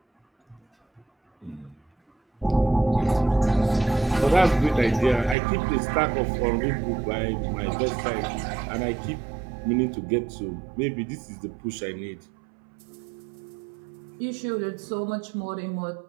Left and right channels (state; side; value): drops out; left; at 5.4 s